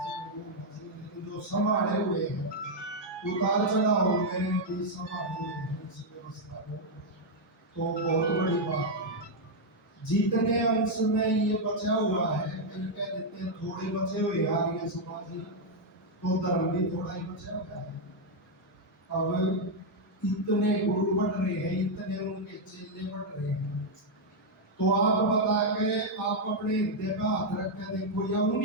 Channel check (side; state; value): both; normal; correlation -0.01